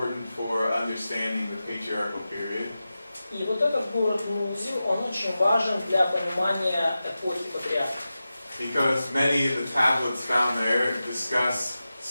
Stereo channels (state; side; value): inverted; both; correlation -0.93